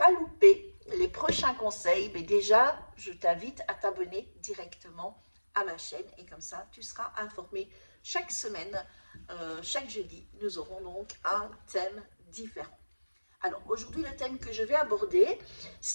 louper les prochains conseils, mais déjà, je t'invite à t'abonner directement à ma chaîne et comme ça, tu seras informé chaque semaine, chaque jeudi. Nous aurons donc un thème différent. Alors, aujourd'hui, le thème que je vais aborder,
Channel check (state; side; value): inverted; both; correlation -1.00